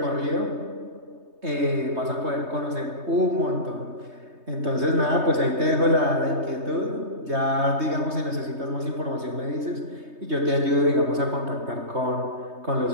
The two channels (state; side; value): late; left; 3.2 ms